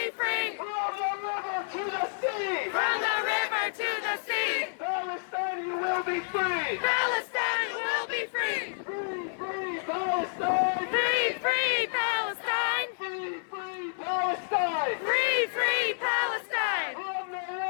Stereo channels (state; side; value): silent; right; 58 dB below the other